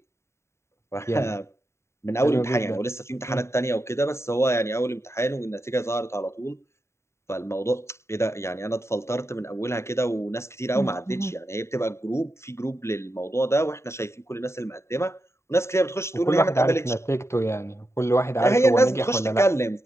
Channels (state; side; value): late; right; 0.13 ms